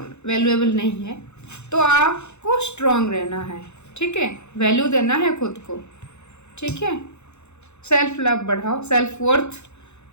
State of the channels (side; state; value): right; late; 0.82 ms